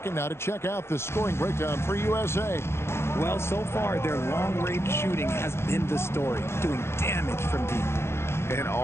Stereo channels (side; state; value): right; late; 0.12 ms